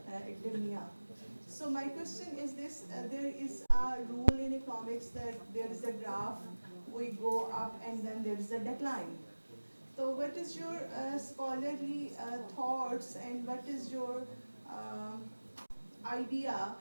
academia. So my question is this, there is a rule in economics that there is a graph, we go up and then there is a decline. So what is your scholarly thoughts, and what is your idea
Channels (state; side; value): inverted; both; correlation -1.00